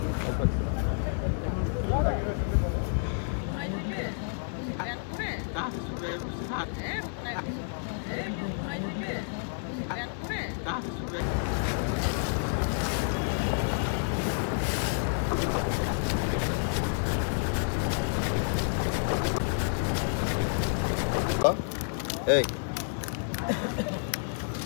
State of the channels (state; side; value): silent; right; digital silence